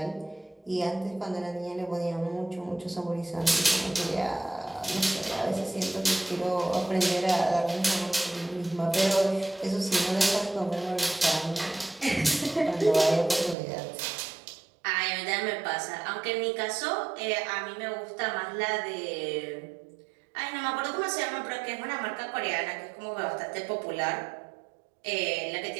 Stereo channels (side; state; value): left; drops out; at 13.6 s